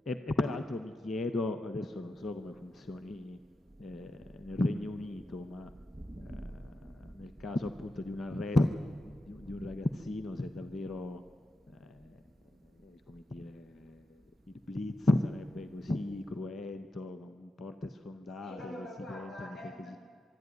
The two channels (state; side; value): normal; both; correlation 0.88